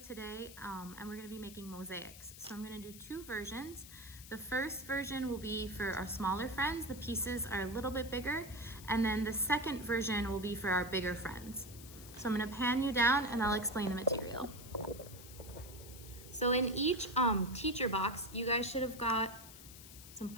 and we're going to be making mosaics. So I'm going to do two versions. The first version will be for our smaller friends. The pieces are a little bit bigger, and then the second version will be for our bigger friends. So I'm going to pan you down and I'll explain the material. So in each teacher box, you guys should have got some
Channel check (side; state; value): left; noise; hiss, 16 dB below the sound